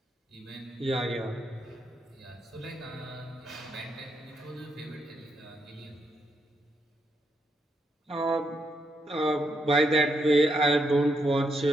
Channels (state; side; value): normal; both; correlation 0.79